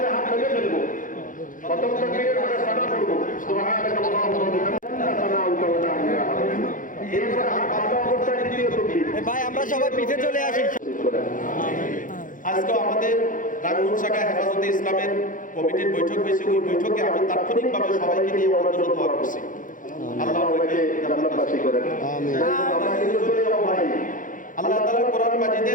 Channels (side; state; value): right; late; 0.38 ms